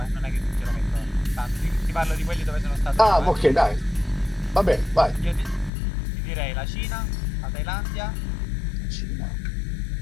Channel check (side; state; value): right; drops out; at 5.7 s